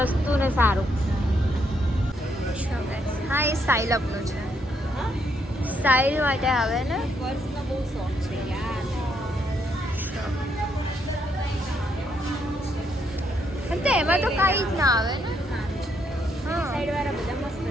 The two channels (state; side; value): normal; both; correlation 0.75